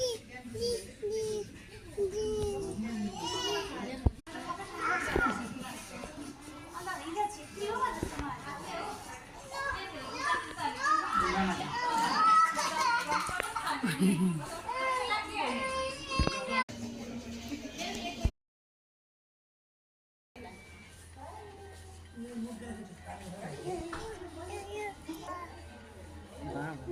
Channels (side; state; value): both; identical; correlation 1.00